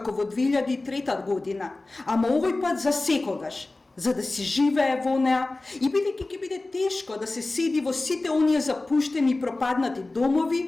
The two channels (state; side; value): quieter; right; 3.1 dB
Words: во 2003 година, ама овој пат за секогаш, за да си живее во неа и бидејќи ќе биде тешко да се седи во сите оние запуштени и пропаднати